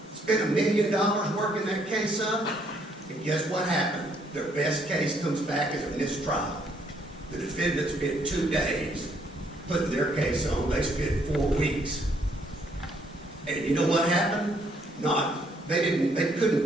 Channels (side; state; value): both; normal; correlation 0.68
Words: spent $1 million working that case up, and guess what happened? Their best case comes back as a mistrial. The defendant spent 2 days putting their case on. They spent 4 weeks. And you know what happened? They couldn't